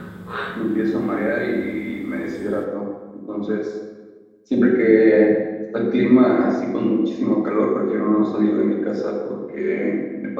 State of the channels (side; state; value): both; identical; correlation 1.00